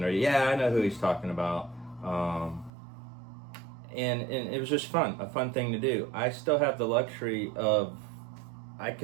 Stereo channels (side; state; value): left; drops out; at 2.7 s